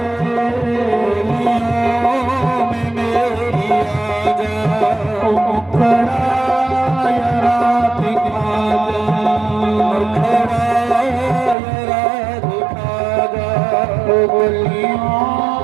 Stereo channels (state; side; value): drops out; left; at 11.6 s